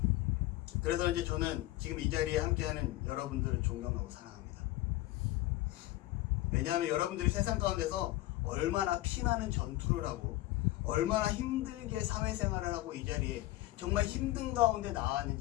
그래서 이제 저는 지금 이 자리에 함께하는 여러분들을 존경하고 사랑합니다. 왜냐하면 여러분들이 세상 가운데서 얼마나 피나는 전투를 하고 얼마나 힘들게 사회생활을 하고 이 자리에 정말 힘든 가운데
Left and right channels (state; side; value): quieter; right; 17.0 dB